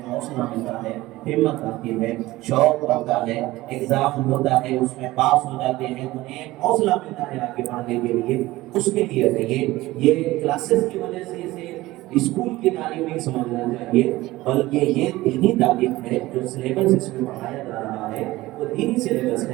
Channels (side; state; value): left; quieter; 18.2 dB